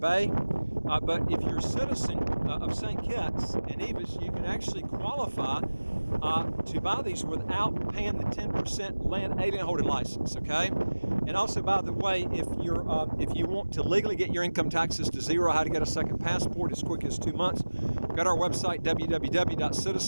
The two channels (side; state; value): both; inverted; correlation -1.00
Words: Bay, but if you're a citizen of St. Kitts and Nevis, you can actually qualify to buy these without paying the 10% land alien holding license, okay? And also, by the way, if you want to legally get your income taxes to zero, how to get a second passport as quick as 2 months, go to our website,